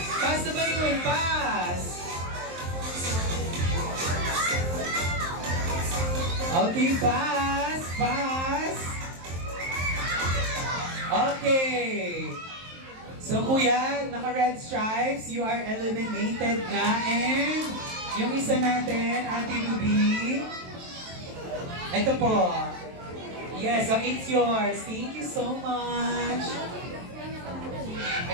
Pass the balloon. Pass. Okay, pass. Pass. Okay. So, kuya, naka-red stripes, you are eliminated na. And yung isa natin, Ate Ruby. Ito po. Yes, so it's yours. Thank you so much.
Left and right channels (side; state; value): left; late; 23 ms